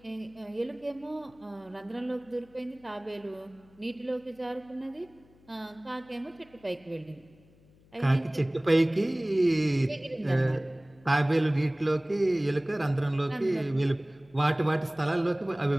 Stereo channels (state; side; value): noise; left; hum, 28 dB below the sound